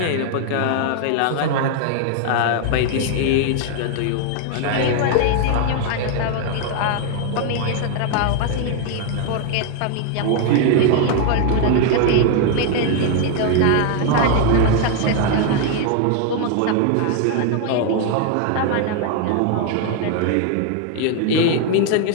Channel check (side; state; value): both; different; correlation 0.00